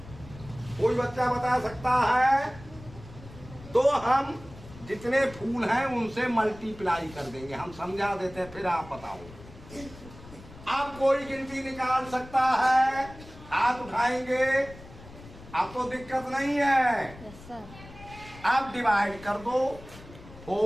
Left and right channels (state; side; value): noise; left; rumble, 18 dB below the sound